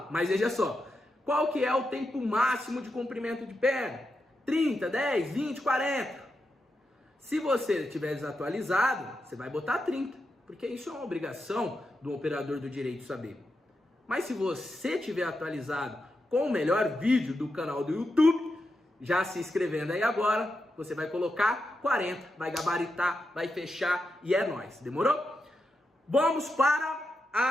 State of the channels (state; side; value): normal; both; correlation 0.87